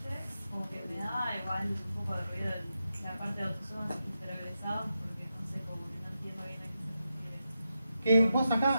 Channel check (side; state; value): both; inverted; correlation -0.88